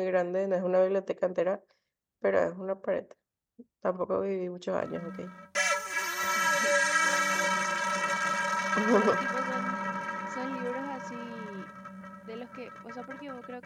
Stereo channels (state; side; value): identical; both; correlation 1.00